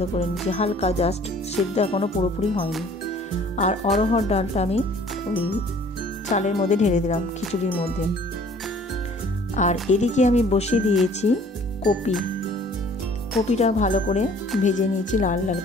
করে নিয়েছি, হালকা জাস্ট সেদ্ধ, এখনও পুরোপুরি হয়নি। আর অড়হর ডালটা আমি ওই চালের মধ্যে ঢেলে দিলাম খিচুড়ির মধ্যে। আর এদিকে আমি বসিয়ে দিয়েছি কপিটা ভালো করে ভেজে নিয়েছি লাল লাল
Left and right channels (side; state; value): both; normal; correlation 0.54